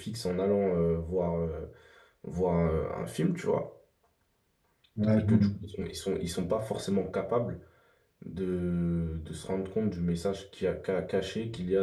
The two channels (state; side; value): identical; both; correlation 1.00